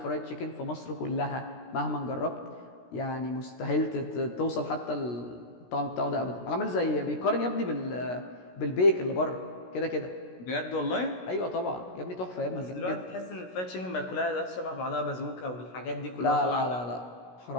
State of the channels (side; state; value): right; late; 16 ms